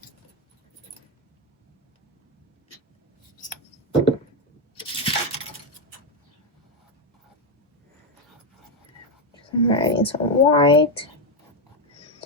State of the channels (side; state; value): both; normal; correlation 0.06